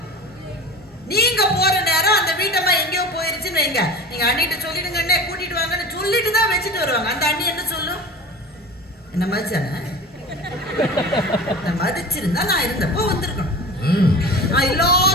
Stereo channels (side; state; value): both; normal; correlation 0.34